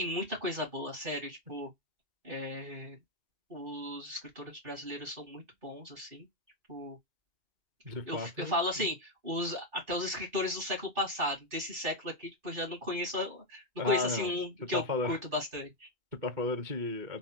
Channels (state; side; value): late; left; 2.5 ms